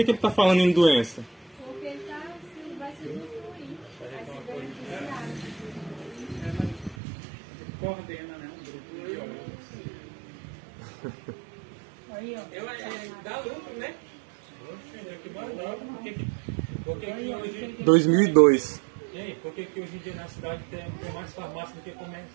está falando em doença? Porque ele vai se destruir, vai se beneficiar. Coordena, né? Um grupo de biólogos. Aí, ó. Dá lucro, né? É que mais dá. Por que hoje... 2002. Ei, por que hoje em dia na cidade tem mais farmácia do que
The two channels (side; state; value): left; drops out; at 7.0 s